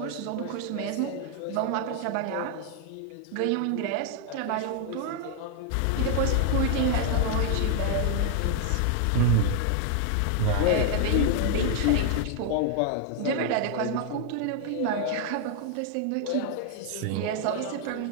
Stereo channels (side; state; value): both; different; correlation 0.00